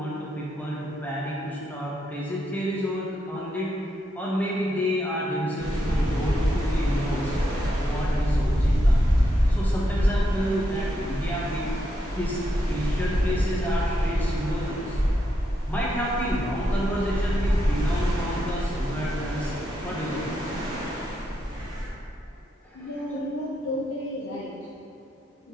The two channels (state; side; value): normal; both; correlation 0.81